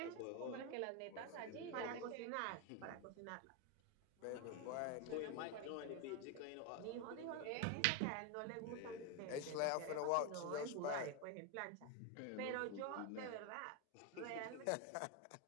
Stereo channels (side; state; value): both; different; correlation 0.01